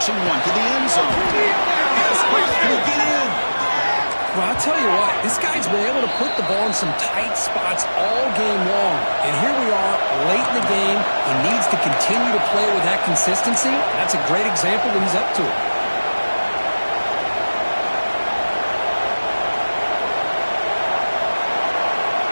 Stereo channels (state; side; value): inverted; both; correlation -1.00